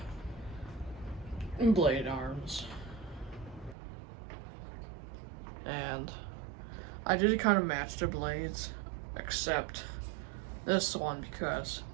blade arms. And I did kind of match the blades, except this one, because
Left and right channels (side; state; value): left; drops out; at 3.8 s